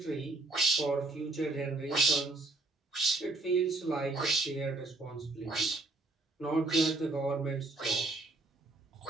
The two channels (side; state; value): left; quieter; 3.0 dB